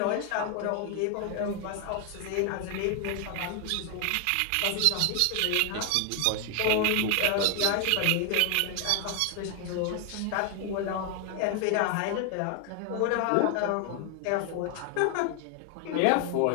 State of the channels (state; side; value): different; both; correlation 0.00